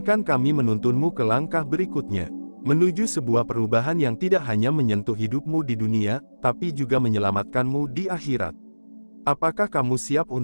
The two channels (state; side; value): inverted; both; correlation -1.00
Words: kami menuntunmu ke langkah berikutnya. Menuju sebuah perubahan yang tidak hanya menyentuh hidupmu di dunia, tapi juga menyelamatkanmu di akhirat. Apakah kamu siap